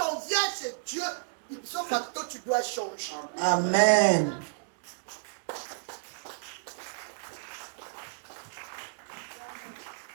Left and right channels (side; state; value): left; silent; digital silence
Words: on vient chez Dieu, ipso facto, tu dois changer. Amen.